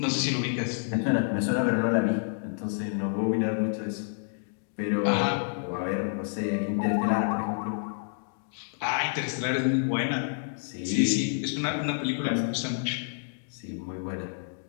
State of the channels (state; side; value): silent; right; digital silence